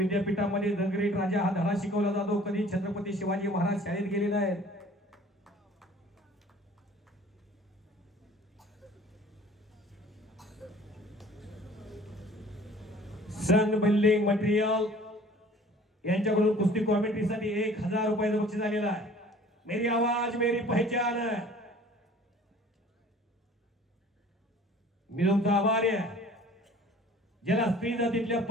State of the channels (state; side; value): normal; both; correlation 0.50